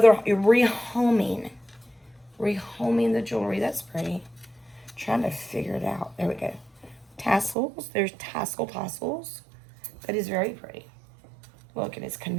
rehoming the jewelry. That's pretty. Trying to figure it out. There we go. Tassels. There's tassels. That is very pretty. Look, and it's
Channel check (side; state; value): left; drops out; at 7.6 s